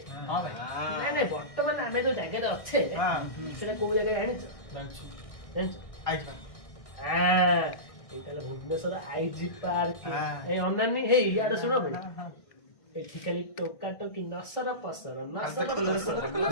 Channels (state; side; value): late; right; 1.6 ms